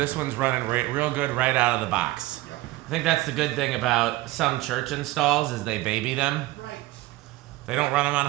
one's running real good right out of the box. I think that's the good thing about some church installs is they baby them. Right. They don't run them on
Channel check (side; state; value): left; quieter; 18.2 dB